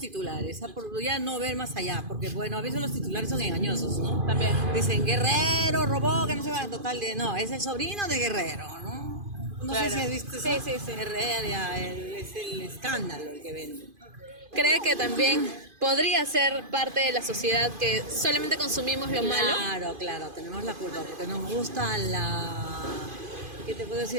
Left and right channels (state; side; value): late; left; 2.5 ms